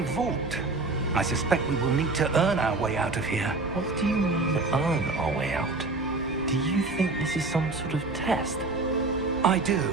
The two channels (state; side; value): quieter; left; 3.5 dB